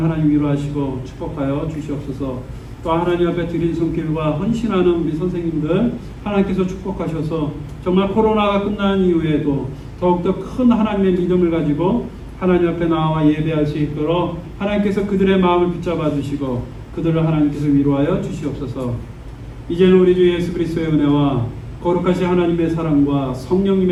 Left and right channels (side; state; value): both; identical; correlation 1.00